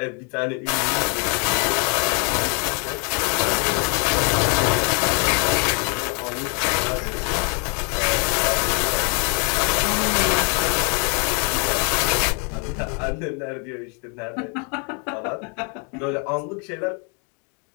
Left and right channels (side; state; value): right; quieter; 37.5 dB